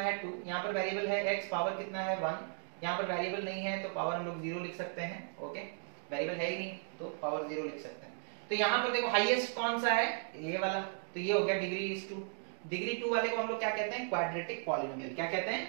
2, यहां पर वेरिएबल है x, पावर कितना है 1, यहां पर वेरिएबल नहीं है तो पावर हम लोग 0 लिख सकते हैं। ओके, वेरिएबल है ही नहीं तो पावर 0 लिख सकते हैं। तो यहां पर देखो हाईएस्ट कौन सा है, ये वाला, तो ये हो गया डिग्री 2। डिग्री 2 वाले को हम लोग क्या कहते हैं, क्वाड्रेटिक पॉलिनोमियल। क्या कहते हैं,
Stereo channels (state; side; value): silent; left; 54 dB below the other